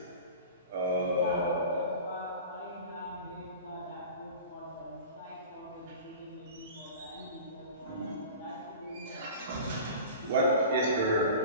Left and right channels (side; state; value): both; inverted; correlation -0.37